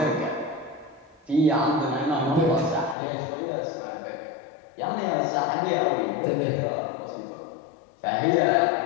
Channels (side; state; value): right; drops out; at 3.0 s